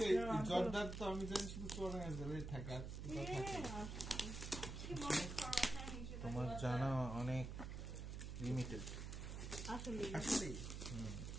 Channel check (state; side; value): noise; right; hum, 6 dB below the sound